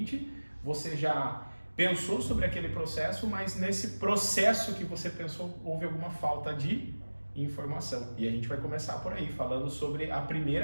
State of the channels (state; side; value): inverted; both; correlation -1.00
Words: você já pensou sobre aquele processo, mas nesse processo que você pensou houve alguma falta de informação. E a gente vai começar por aí, falando sobre a